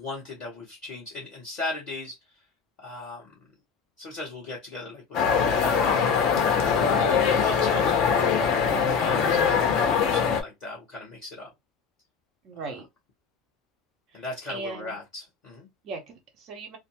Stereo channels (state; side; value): quieter; right; 5.9 dB